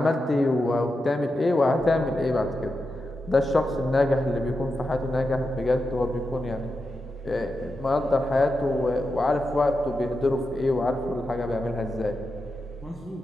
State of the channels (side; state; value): both; normal; correlation 0.88